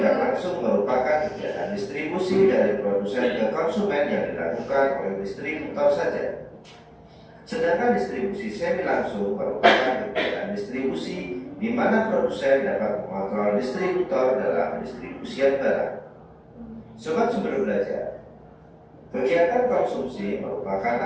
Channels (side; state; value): both; identical; correlation 1.00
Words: langsung merupakan kegiatan distribusi dari produsen ke konsumen yang dilakukan oleh distributor saja. Sedangkan distribusi semi langsung merupakan kegiatan distribusi di mana produsen dapat mengontrol distributor dalam pendistribusian barang. Sobat Sumber Belajar, kegiatan konsumsi